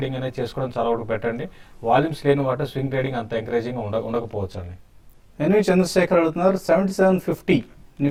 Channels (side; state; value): both; identical; correlation 1.00